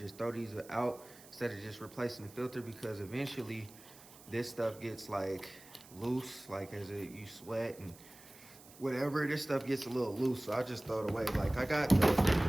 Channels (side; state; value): right; noise; hiss, 21 dB below the sound